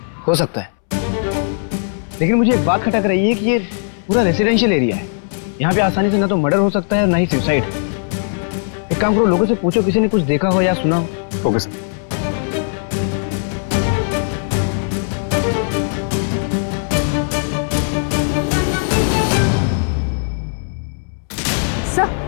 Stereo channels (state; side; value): silent; right; 67 dB below the other